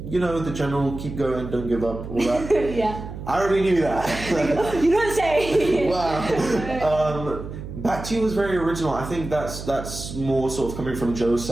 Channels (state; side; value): noise; right; hum, 10 dB below the sound